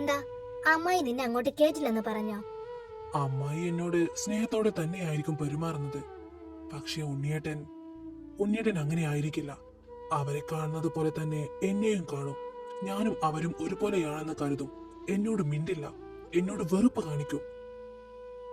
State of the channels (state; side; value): identical; both; correlation 1.00